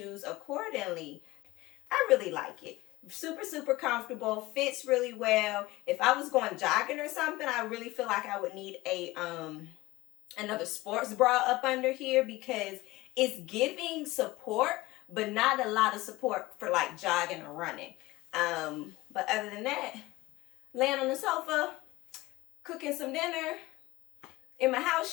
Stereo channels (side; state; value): right; quieter; 19.5 dB